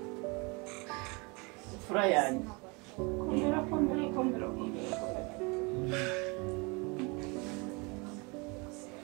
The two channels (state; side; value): quieter; left; 29.0 dB